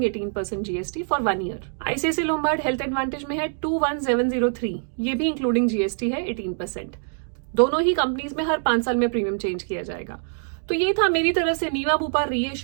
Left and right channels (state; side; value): silent; left; 62 dB below the other